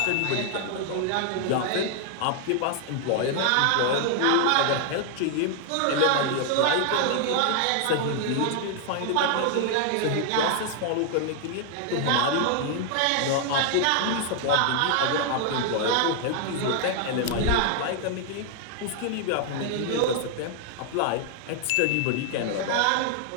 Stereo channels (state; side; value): different; both; correlation 0.00